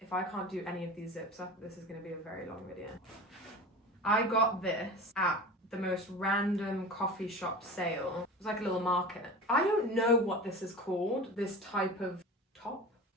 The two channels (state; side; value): normal; both; correlation 0.33